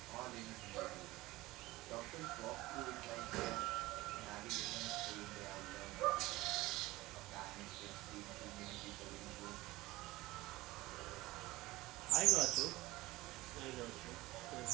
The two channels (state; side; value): quieter; left; 19.1 dB